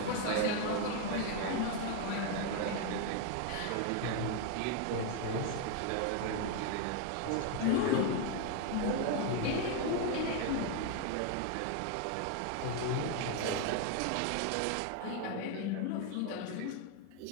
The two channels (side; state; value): both; different; correlation 0.01